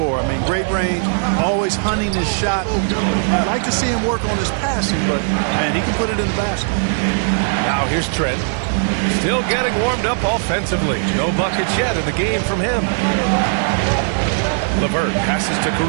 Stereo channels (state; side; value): silent; left; digital silence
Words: I mean, great range, always hunting his shot. I'd like to see him work on his passing, but, man, he can put it in the basket. Now here's Trent. Still getting warmed up offensively. No buckets yet in the game from him. LeVert passes to